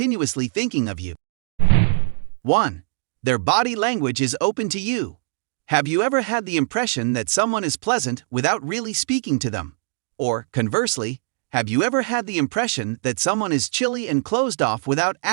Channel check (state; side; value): silent; left; digital silence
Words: thinking of you. 1. Their body language is open to you. Have you ever had the impression that someone is pleasant without really speaking to them? Or, conversely, have you ever had the impression that someone is chilly and closed off without